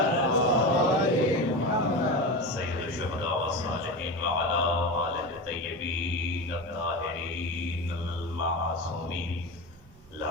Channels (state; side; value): normal; both; correlation 0.23